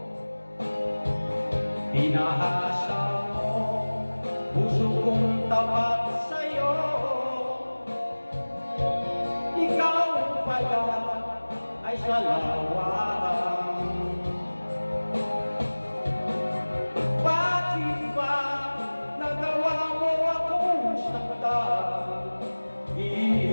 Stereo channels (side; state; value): both; inverted; correlation -1.00